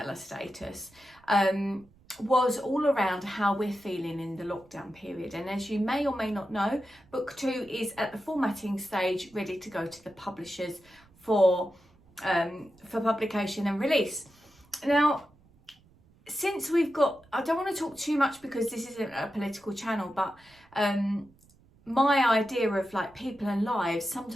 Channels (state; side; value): noise; right; rumble, 29 dB below the sound